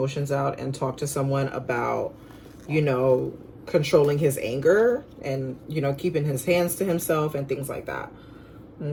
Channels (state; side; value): identical; both; correlation 1.00